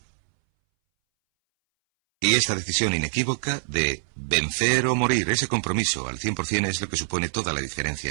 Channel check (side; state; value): left; silent; 61 dB below the other